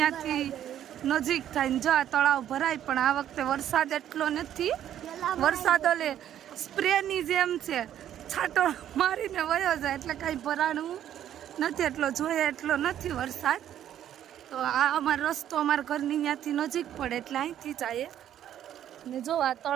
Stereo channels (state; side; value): quieter; left; 10.9 dB